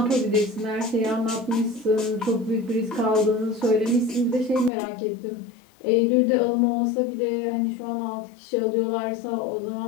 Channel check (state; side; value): drops out; right; at 4.7 s